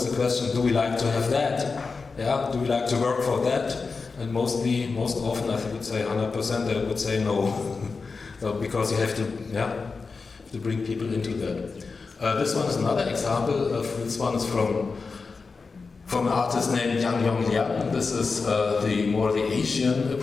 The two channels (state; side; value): quieter; right; 4.5 dB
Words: the question: do we like to have that? Yeah? Do we like to work for that? And most often, I would say 100%, they would say no. So because you have to bring people into that. This one is another example. This one is from an artist named Yang Yong Liang. This is the Asian